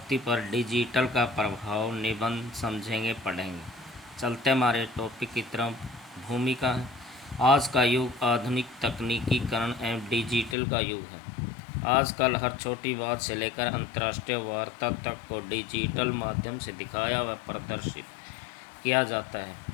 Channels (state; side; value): drops out; right; at 10.6 s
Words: पर डिजिटल का प्रभाव निबंध समझेंगे, पढ़ेंगे। चलते हमारे टॉपिक की तरफ। भूमिका है। आज का युग आधुनिक तकनीकीकरण एवं डिजिटल का युग है। आजकल हर छोटी बात से लेकर अंतर्राष्ट्रीय वार्ता तक को डिजिटल माध्यम से दिखाया व प्रदर्शित किया जाता है।